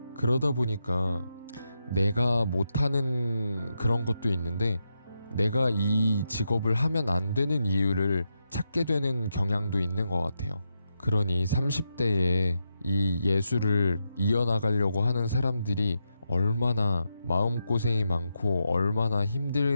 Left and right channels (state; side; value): inverted; both; correlation -0.86